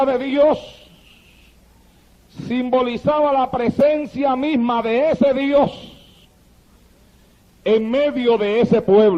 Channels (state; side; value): identical; both; correlation 1.00